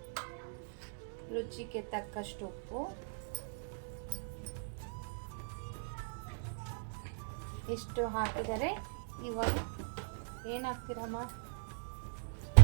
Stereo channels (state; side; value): silent; left; digital silence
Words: ರುಚಿಗೆ ತಕ್ಕಷ್ಟು ಉಪ್ಪು. ಇಷ್ಟು ಹಾಕಿದರೆ ಇವಾಗ ಏನು ಹಾಕ್ತೀರಮ್ಮ?